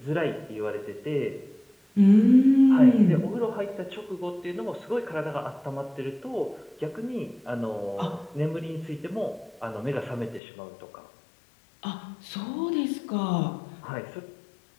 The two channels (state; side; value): drops out; right; at 10.4 s